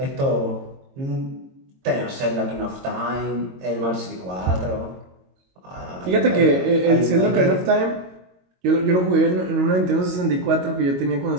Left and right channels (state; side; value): late; left; 22 ms